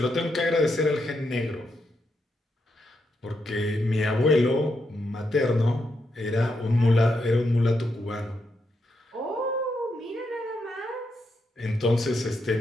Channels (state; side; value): normal; both; correlation 0.82